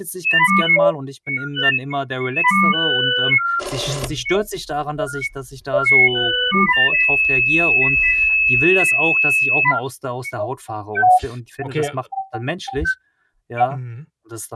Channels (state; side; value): identical; both; correlation 1.00